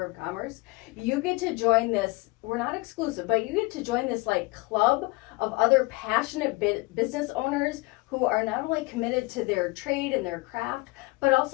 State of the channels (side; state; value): right; quieter; 24.4 dB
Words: of Commerce, you get to join this, we're not exclusive, but you get to join this like club of other passionate business owners who are not only committed to their trade and their craft, but